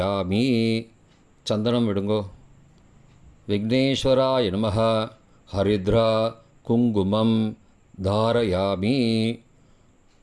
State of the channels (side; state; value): both; identical; correlation 1.00